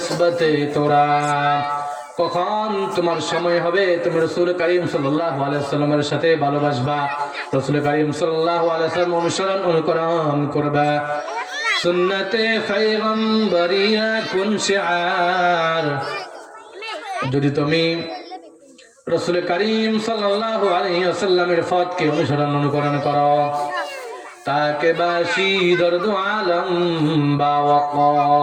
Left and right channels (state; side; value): identical; both; correlation 1.00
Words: তোরা, কখন তোমার সময় হবে তুমি রাসূল করিম সাল্লাল্লাহু আলাইহি ওয়াসাল্লামের সাথে ভালোবাসবা, রাসূল করিম সাল্লাল্লাহু আলাইহি ওয়াসাল্লাম অনুকরণ করবা। সুন্নতে পয়গম্বরিয়া কুন শিআর, যদি তুমি রাসূল করিম সাল্লাল্লাহু আলাইহি ওয়াসাল্লামের পথকে অনুকরণ করো, তাকে বাসি দর্দ আলম বা